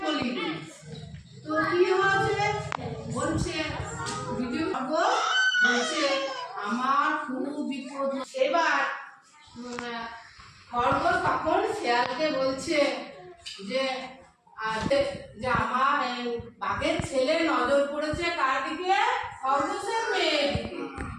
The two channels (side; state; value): both; identical; correlation 1.00